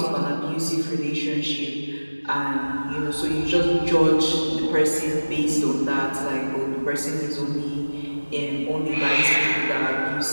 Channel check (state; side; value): inverted; both; correlation -1.00